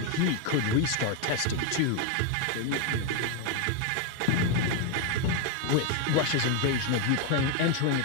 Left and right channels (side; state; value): both; different; correlation 0.01